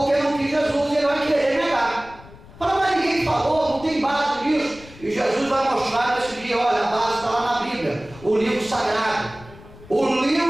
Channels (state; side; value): noise; left; rumble, 20 dB below the sound